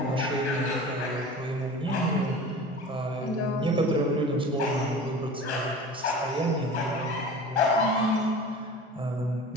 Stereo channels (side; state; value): both; normal; correlation 0.37